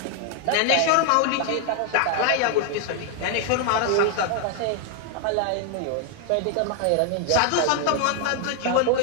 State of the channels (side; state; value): both; different; correlation 0.00